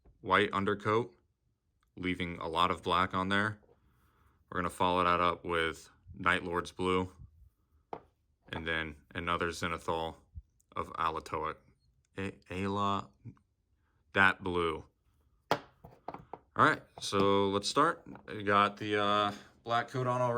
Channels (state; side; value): identical; both; correlation 1.00